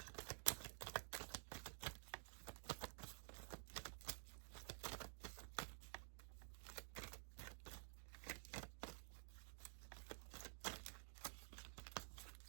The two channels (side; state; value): left; silent; digital silence